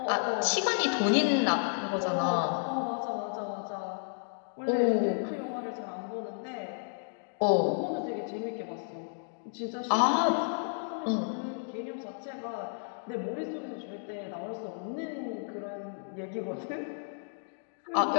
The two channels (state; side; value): silent; right; digital silence